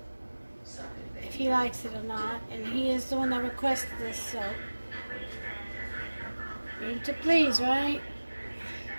if he likes it or not, and he is the one that requested this, so need to please, right?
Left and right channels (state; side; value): inverted; both; correlation -1.00